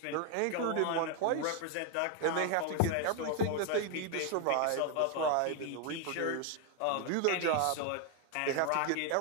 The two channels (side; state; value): both; different; correlation 0.01